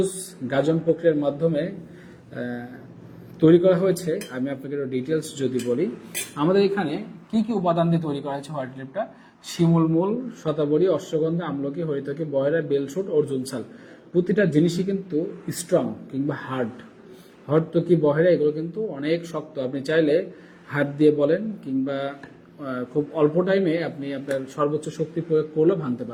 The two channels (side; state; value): both; identical; correlation 1.00